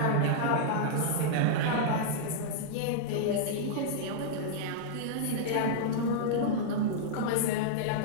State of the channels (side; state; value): both; different; correlation -0.02